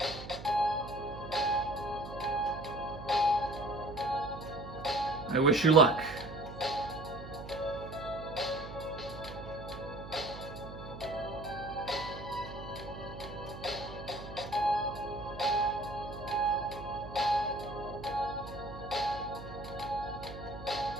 I wish you luck.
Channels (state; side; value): noise; right; hum, 12 dB below the sound